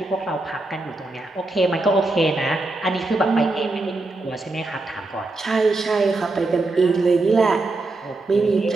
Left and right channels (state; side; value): quieter; left; 3.1 dB